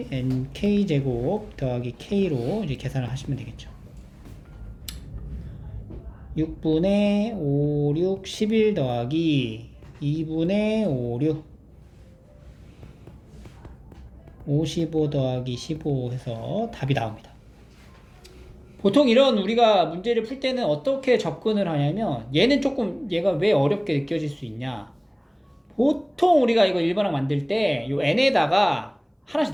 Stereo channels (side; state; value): both; identical; correlation 1.00